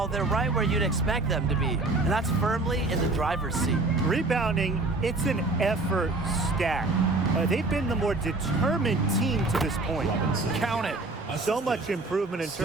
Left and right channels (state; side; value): quieter; left; 3.2 dB